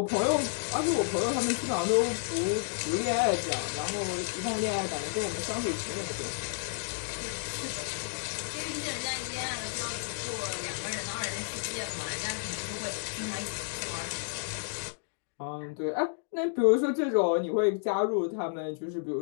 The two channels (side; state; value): right; silent; digital silence